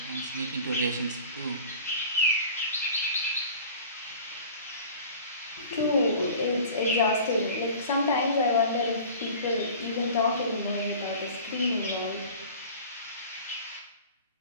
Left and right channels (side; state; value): both; inverted; correlation -0.42